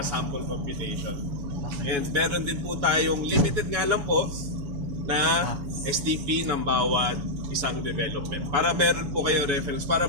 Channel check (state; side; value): late; left; 7.1 ms